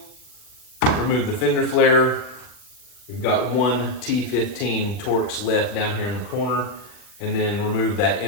remove the fender flare. We've got 1 T15 Torx left down here in the corner, and then remove that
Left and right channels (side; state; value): right; late; 40 ms